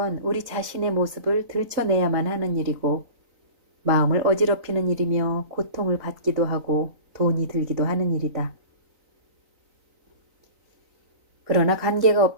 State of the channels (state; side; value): late; left; 3.9 ms